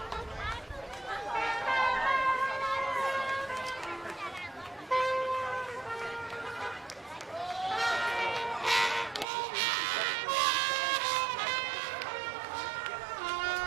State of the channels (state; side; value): drops out; left; at 9.2 s